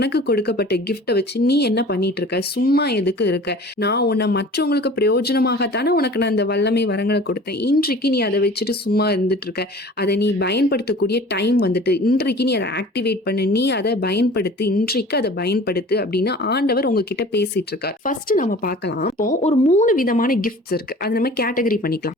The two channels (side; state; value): both; normal; correlation 0.44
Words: கொடுக்கப்பட்ட கிஃப்ட வச்சு நீ என்ன பண்ணிட்டு இருக்க, சும்மா எதுக்கு இருக்க, நான் உன்னை மற்றவங்களுக்கு பிரயோஜனமாகத்தானே உனக்கு நான் அந்த வல்லமை வரங்களை கொடுத்தேன், இன்றைக்கு நீ அதை வச்சுட்டு சும்மா இருந்துட்டு இருக்க, அதை நீ பயன்படுத்தக்கூடிய டைம் வந்துட்டு, இன்றைக்கு நீ அதை ஆக்டிவேட் பண்ணு, நீ அதை பயன்படுத்து, இன்றைக்கு அதை பயன்படுத்து அப்படின்னு ஆண்டவர் உங்ககிட்ட பேசிட்டு இருக்கார். ஃபர்ஸ்ட் நம்ம பார்க்கலாம். இப்போ ஒரு 3 விதமான கிஃப்ட்ஸ் இருக்கு, அது நம்ம கேட்டகரி பண்ணிக்கலாம்,